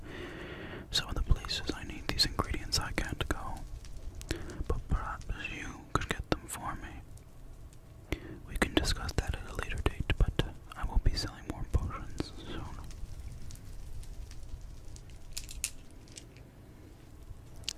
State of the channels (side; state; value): both; identical; correlation 1.00